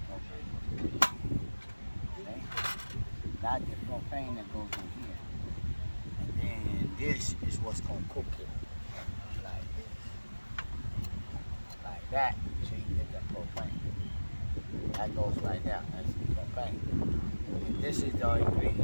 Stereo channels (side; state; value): both; inverted; correlation -1.00